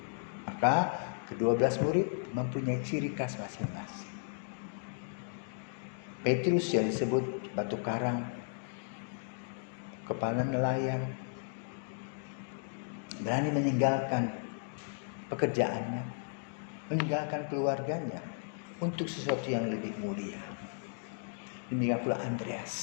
Maka ke-12 murid mempunyai ciri khas masing-masing. Petrus yang disebut batu karang, kepala nelayan, berani meninggalkan pekerjaannya, meninggalkan keluarganya untuk sesuatu yang lebih mulia. Demikian pula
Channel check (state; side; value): silent; right; digital silence